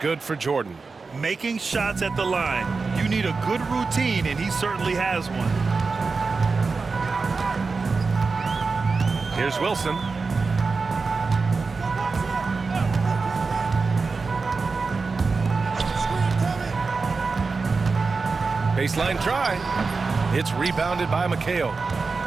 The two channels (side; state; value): left; quieter; 4.4 dB